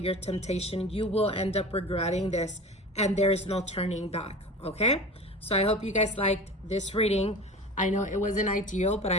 temptation, you will end up regretting this, and there is no turning back. Okay, so I hope you guys liked this reading. I know it wasn't ideal, but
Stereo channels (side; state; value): both; normal; correlation 0.35